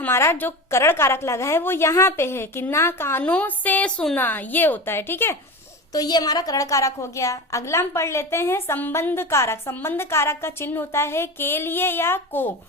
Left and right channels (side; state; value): both; normal; correlation 0.27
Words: जो करण कारक लगा है वो यहाँ पे है कि ना कानों से सुना, ये होता है, ठीक है। तो ये हमारा करण कारक हो गया। अगला हम पढ़ लेते हैं संबंध कारक। संबंध कारक का चिन्ह होता है के लिए या को।